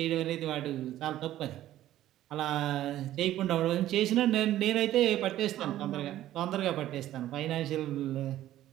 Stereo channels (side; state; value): left; quieter; 13.5 dB